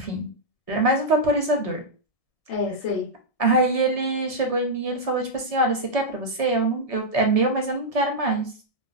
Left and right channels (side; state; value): right; late; 1.7 ms